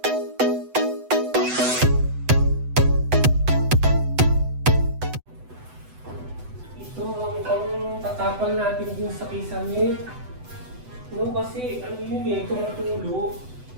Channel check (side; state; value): left; late; 8.0 ms